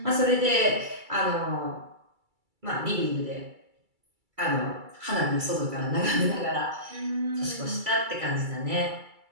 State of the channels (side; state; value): left; late; 2.3 ms